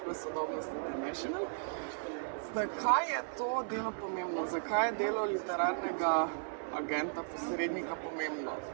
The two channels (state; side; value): silent; left; 54 dB below the other